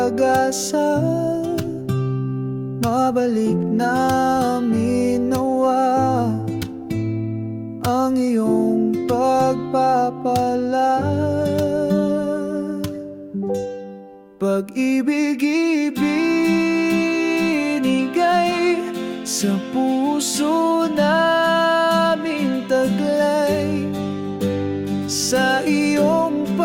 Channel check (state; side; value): identical; both; correlation 1.00